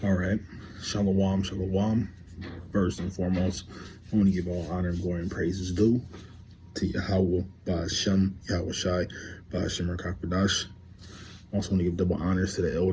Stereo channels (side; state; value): both; identical; correlation 1.00